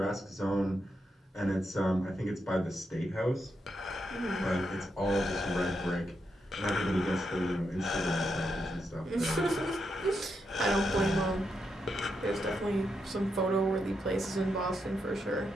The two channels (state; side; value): normal; both; correlation 0.83